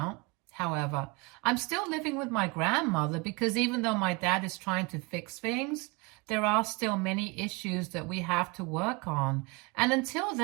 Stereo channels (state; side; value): quieter; left; 26.6 dB